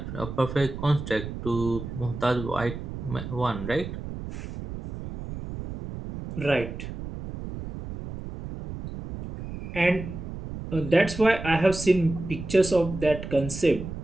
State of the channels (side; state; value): right; noise; rumble, 9 dB below the sound